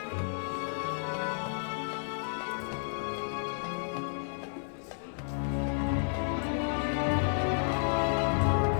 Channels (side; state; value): right; silent; 56 dB below the other